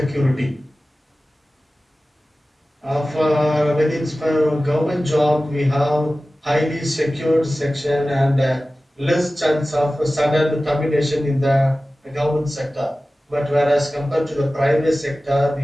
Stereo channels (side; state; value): both; normal; correlation 0.96